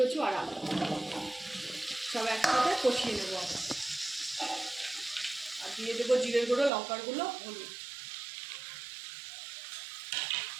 আর আলু। সব একসাথে কষিয়ে নেবো আমি। আর দিয়ে দেবো জিরের গুঁড়ো, লঙ্কার গুঁড়ো, হলুদ।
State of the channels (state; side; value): drops out; left; at 6.7 s